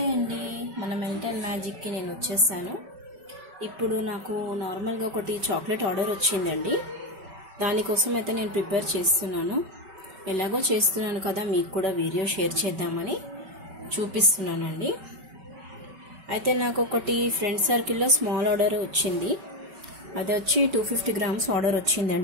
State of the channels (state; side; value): late; left; 5.3 ms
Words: అండి, మన మెంటల్ మ్యాజిక్కి నేను వచ్చేసాను. ఇప్పుడు నాకు నార్మల్గా ఒకటి చాక్లెట్ ఆర్డర్ వచ్చిందండి. దానికోసం అయితే నేను ప్రిపేర్ చేస్తున్నాను. ఎలాగో చేస్తున్నాను కదా, మీకు కూడా వీడియో షేర్ చేద్దామని చూపిస్తున్నానండి. అయితే నాకు ఒకటి ఫ్రెండ్ సర్కిల్లో స్మాల్ ఆర్డర్ వచ్చింది. అది వచ్చి 250 గ్రామ్స్ ఆర్డర్